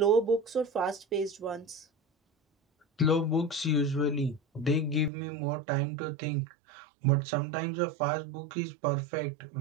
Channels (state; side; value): drops out; left; at 5.1 s